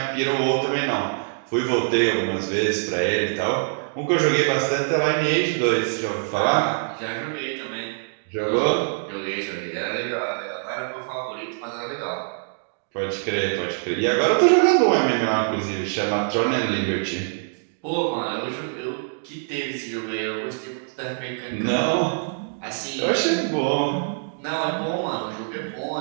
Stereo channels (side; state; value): left; silent; digital silence